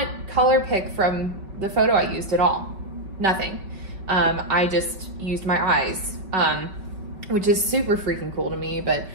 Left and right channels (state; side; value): late; left; 5.2 ms